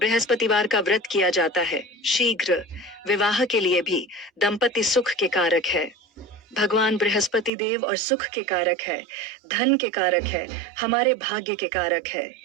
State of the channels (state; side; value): drops out; left; at 7.5 s